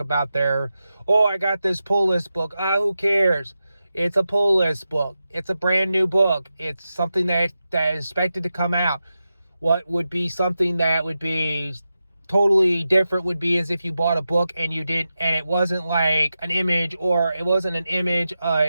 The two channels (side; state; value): both; inverted; correlation -0.90